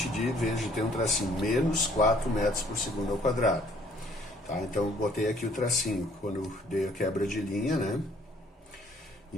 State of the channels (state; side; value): normal; both; correlation 0.61